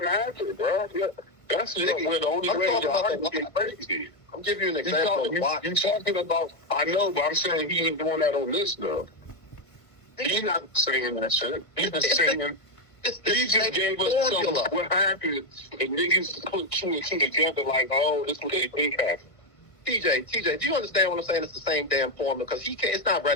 happened, bro. Yeah. That's where the only way to get crazy. I'm giving you an example of watch. You're talking about, I know, but I'm saying he ain't doing that on this, though. He's not saying that shit. He's just saying, he just gave us some, what happened, and niggas put two and two together like, oh, this is what they think happened. TJ, do you understand what I'm saying? It's the same damn formula because it's not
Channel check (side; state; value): right; late; 1.5 ms